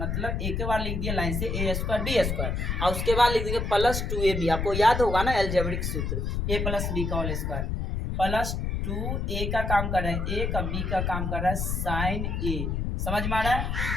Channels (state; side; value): noise; left; rumble, 1 dB below the sound